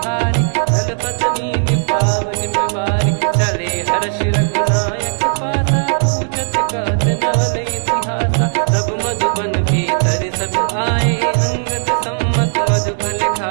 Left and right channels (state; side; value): silent; left; digital silence